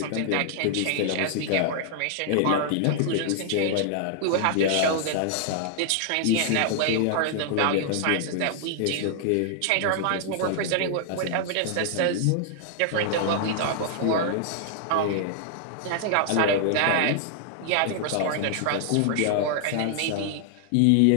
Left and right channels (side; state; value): both; different; correlation -0.01